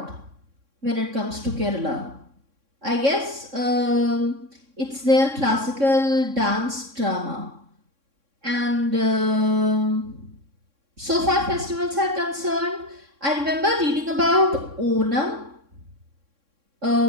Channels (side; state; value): left; late; 3.6 ms